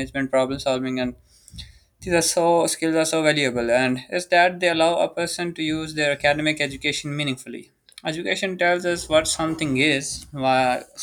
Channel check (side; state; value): both; identical; correlation 1.00